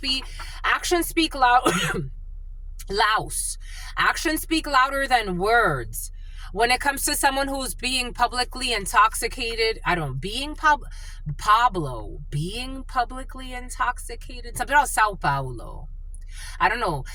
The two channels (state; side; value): identical; both; correlation 1.00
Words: Actions speak loud. Louse. Actions speak louder than words. When it comes to someone who's being publicly intoxicated, being publicly intoxicated. Something about Sao Paulo. I don't know.